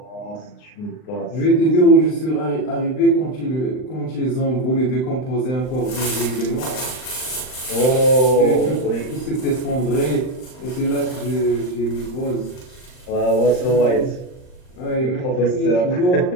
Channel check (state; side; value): late; right; 39 ms